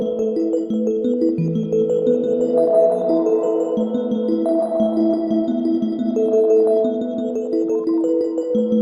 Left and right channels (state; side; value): identical; both; correlation 1.00